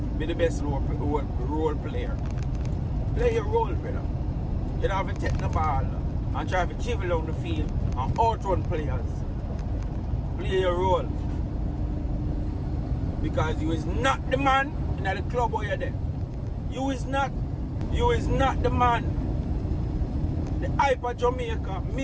Be the best role player. Play your role, brother. You don't have to take the ball and try to dribble down the field and outrun players. Play your role. Because you is not the man in the club where you're there. You is not the man. The hype of Jamaica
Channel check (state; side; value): identical; both; correlation 1.00